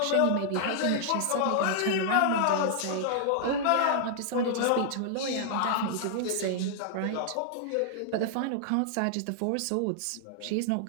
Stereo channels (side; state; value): both; different; correlation -0.01